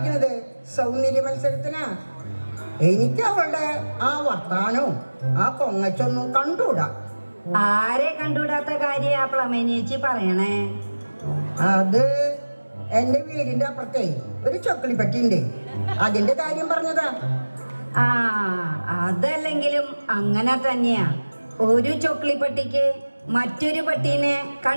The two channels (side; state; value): both; inverted; correlation -1.00